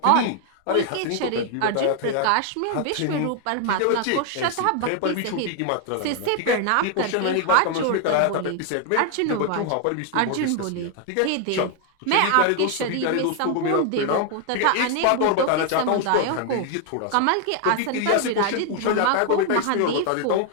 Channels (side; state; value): both; different; correlation 0.00